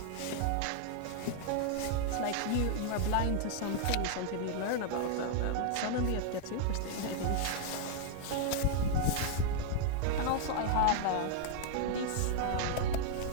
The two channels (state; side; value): different; both; correlation 0.00